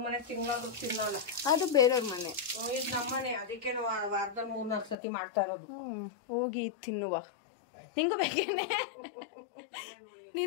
ಮನೆ ತಿಂಗಳಾದ್ರೂ ತಿನ್ನಲ್ಲ. ಅದು ಬೇರೆಯವ್ರ ಮನೆ, ಇದು ನಮ್ಮನೆ. ಅದಕ್ಕೆ ವಾರದಲ್ಲಿ 3-4 ಸತಿ ಮಾಡ್ತಾ ಇರೋದು. ಹೋಗಿ ತಿನ್ನುವ. ನಿಂಗೂ ಬೇಕೇನೆ?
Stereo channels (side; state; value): right; drops out; at 5.0 s